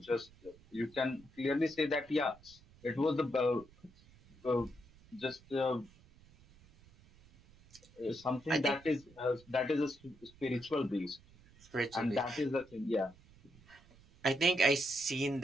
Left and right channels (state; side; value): noise; right; rumble, 25 dB below the sound